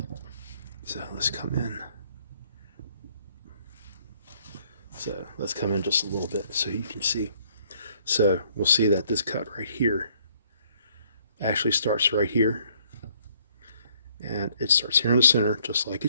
So let's come in. So let's come in just a little bit so you can see. So we'll see that this cut right here actually starts right here. And it starts here in the center, just like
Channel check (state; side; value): inverted; both; correlation -0.65